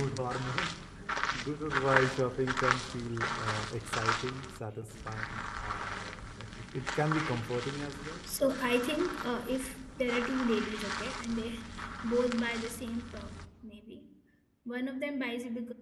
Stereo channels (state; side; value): identical; both; correlation 1.00